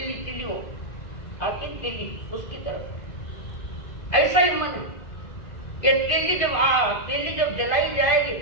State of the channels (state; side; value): late; right; 2.5 ms